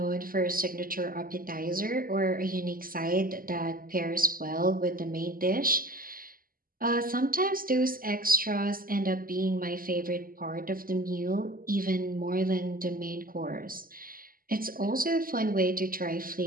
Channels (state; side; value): late; left; 0.42 ms